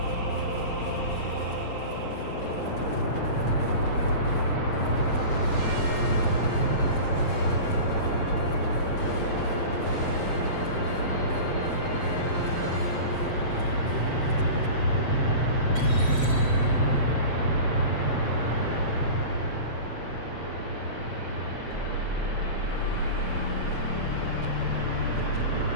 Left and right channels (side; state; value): right; late; 7.7 ms